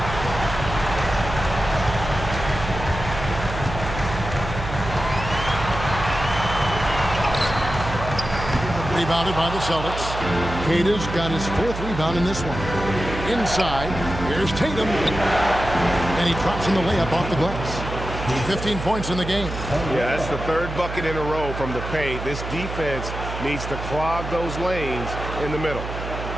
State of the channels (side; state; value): right; noise; hum, 7 dB below the sound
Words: Rebounded by the Celtics. Queta's got his 4th rebound in this one. Inside, here's Tatum. And he drops in the layup off the glass. 15 points in the game. Yeah, that's the 3rd bucket in a row from the paint. This defense needs to clog those lanes in the middle.